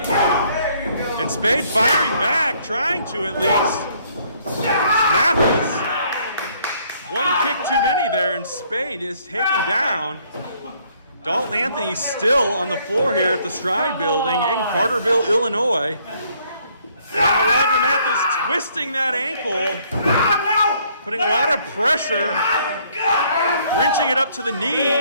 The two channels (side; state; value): both; inverted; correlation -0.65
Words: And Spade firing back, trying to at least. Mathis. One kick too many there, and Spade is taken down. Dalton Anthony still on the floor here at the Stride Building in Carterville, Illinois. And now Roger Matheus twisting that ankle, putting a lot of pressure, wrenching it up to the